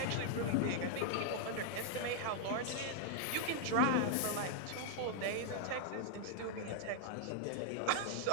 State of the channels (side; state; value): both; different; correlation -0.01